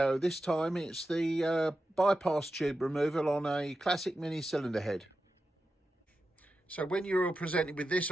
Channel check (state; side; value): normal; both; correlation 0.91